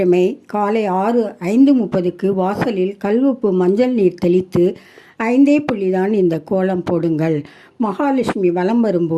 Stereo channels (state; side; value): identical; both; correlation 1.00